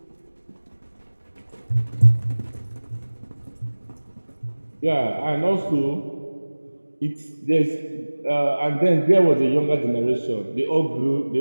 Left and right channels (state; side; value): inverted; both; correlation -1.00